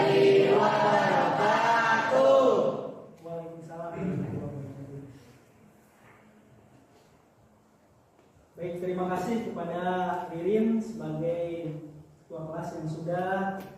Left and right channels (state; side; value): identical; both; correlation 1.00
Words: wabarakatuh. Waalaikumsalam warahmatullahi wabarakatuh. Baik, terima kasih kepada Ririn sebagai ketua kelas yang sudah